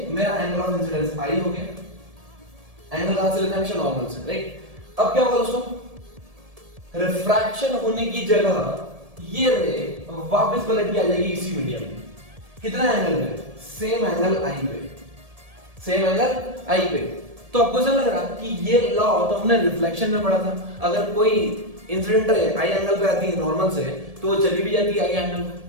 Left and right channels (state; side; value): late; left; 1.7 ms